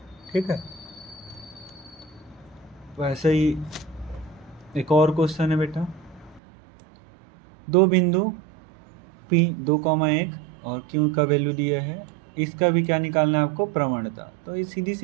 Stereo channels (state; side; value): drops out; left; at 6.4 s